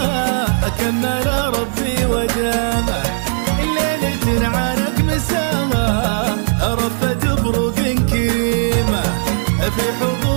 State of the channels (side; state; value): left; silent; 58 dB below the other